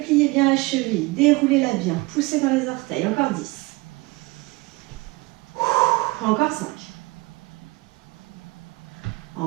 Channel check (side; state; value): left; quieter; 23.2 dB